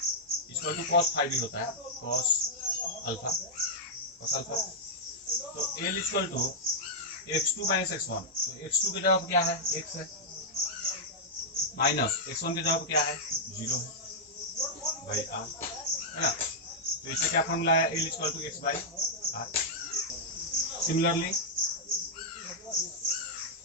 इक्वल टू cos फाई भी होता है, cos अल्फा। तो L equal to x2 - x1, तो x2 की जगह क्या है, x है, माइनस x1 की जगह क्या है, 0 है बाई r, है ना। तो इससे क्या फॉर्मूला है, L equal to x by r। Similarly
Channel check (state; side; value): normal; both; correlation -0.07